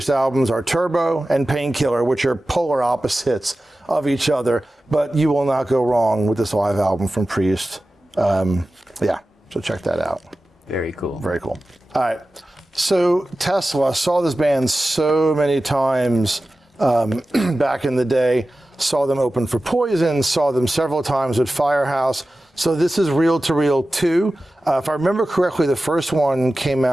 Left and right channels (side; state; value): both; normal; correlation 0.95